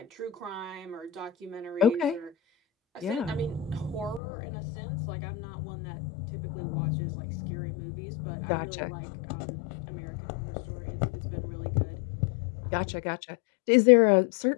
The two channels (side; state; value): right; drops out; at 4.2 s